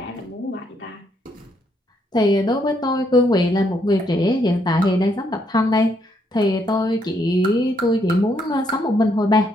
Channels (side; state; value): both; normal; correlation 0.73